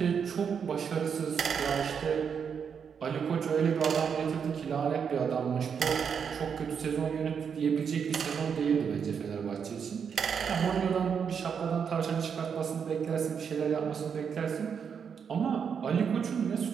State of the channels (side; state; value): left; quieter; 6.9 dB